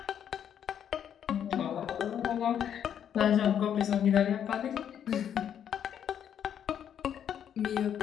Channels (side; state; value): right; quieter; 9.1 dB